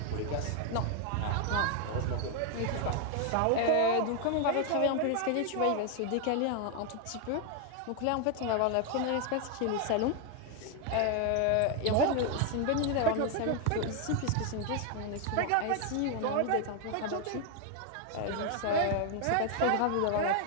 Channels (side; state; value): both; different; correlation 0.01